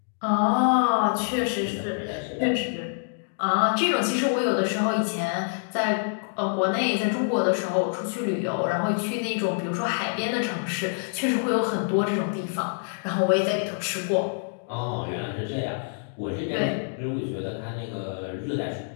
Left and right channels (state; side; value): silent; right; digital silence